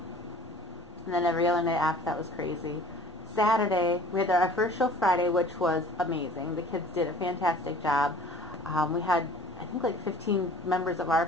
And then every other night after that was crazy. Saturday, we had our first show Friday, which was amazing. The kids did a fantastic job. We had, I think, like 15 members of our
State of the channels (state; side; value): normal; both; correlation 0.47